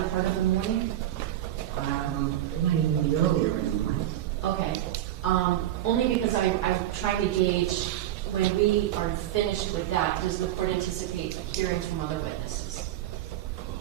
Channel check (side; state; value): left; quieter; 13.0 dB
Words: part of the morning. It might even be earlier in the morning. Okay. Only because I'm trying to gauge when we are finished with that, does the court anticipate hearing from other witnesses?